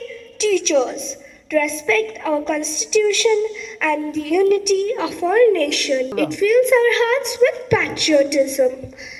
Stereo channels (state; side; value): identical; both; correlation 1.00